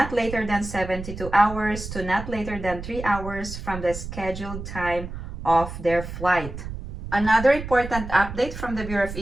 later than 72 hours to not later than 3 hours from the scheduled time of their flight. Another important update from the Bureau of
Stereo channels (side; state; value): right; noise; rumble, 9 dB below the sound